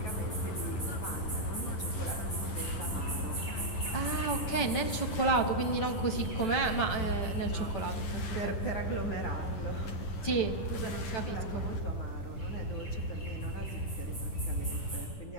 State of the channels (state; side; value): late; right; 10 ms